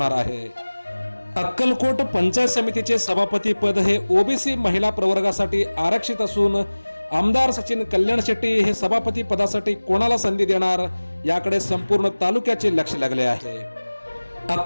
आहे. अक्कलकोट पंचायत समितीचे सभापती पद हे ओबीसी महिला प्रवर्गासाठी आरक्षित असून आमदार सचिन कल्याण शेट्टी हे सभापती पदासाठी कोणाला संधी देणार याकडे संपूर्ण तालुक्याचे लक्ष लागले आहे.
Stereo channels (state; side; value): inverted; both; correlation -1.00